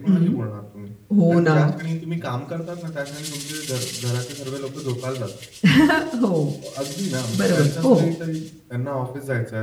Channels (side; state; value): both; identical; correlation 1.00